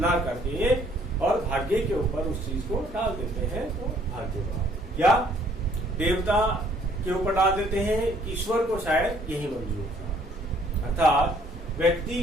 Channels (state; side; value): normal; both; correlation 0.62